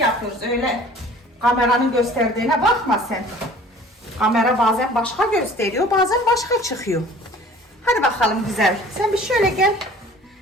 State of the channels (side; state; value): both; normal; correlation 0.48